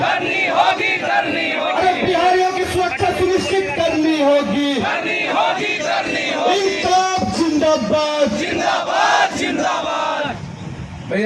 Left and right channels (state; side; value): identical; both; correlation 1.00